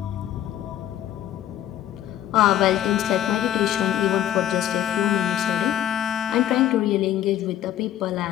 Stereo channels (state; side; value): quieter; right; 11.6 dB